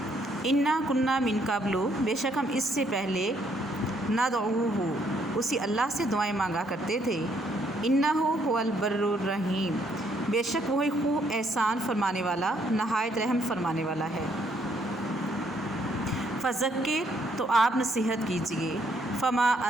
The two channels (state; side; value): normal; both; correlation 0.70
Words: इन्ना कुन्ना मिन क़ब्लु, बेशक हम इससे पहले नदऊहु, उसी अल्लाह से दुआएं मांगा करते थे। इन्नहु हुवल बर्रुर रहीम, बेशक वही खूब एहसान फरमाने वाला, नहायत रहम फरमाने वाला है। फ़ज़क्किर, तो आप नसीहत कीजिए। फ़मा